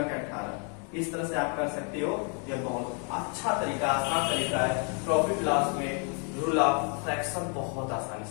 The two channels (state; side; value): quieter; right; 39.5 dB